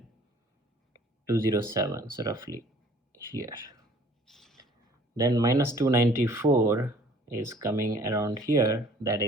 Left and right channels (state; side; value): normal; both; correlation 0.54